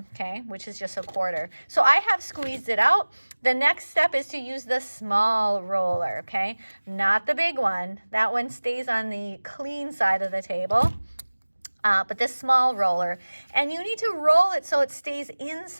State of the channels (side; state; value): both; inverted; correlation -1.00